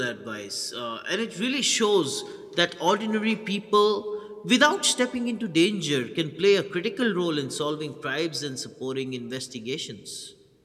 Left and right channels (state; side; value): identical; both; correlation 1.00